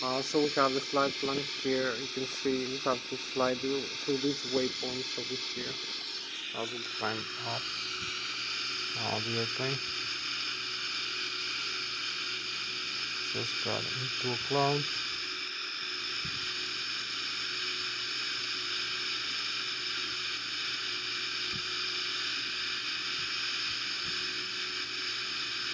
So we have the flight plan here. You can see we have to fly through these waypoints over here. I will climb up the airplane. Just got into a cloud.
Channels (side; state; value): both; identical; correlation 1.00